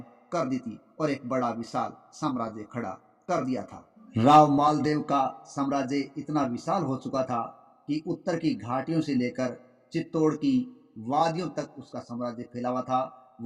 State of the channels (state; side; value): identical; both; correlation 1.00